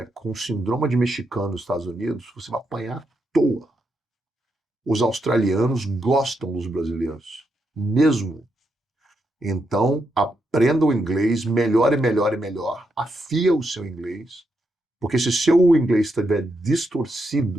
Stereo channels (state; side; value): normal; both; correlation 0.82